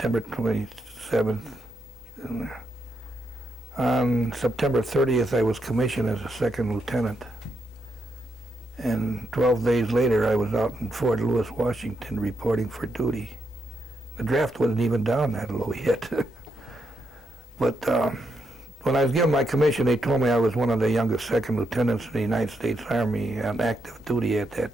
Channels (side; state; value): both; normal; correlation 0.80